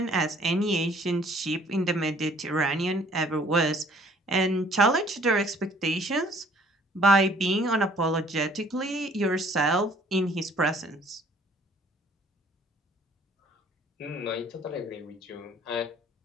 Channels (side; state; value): both; normal; correlation 0.57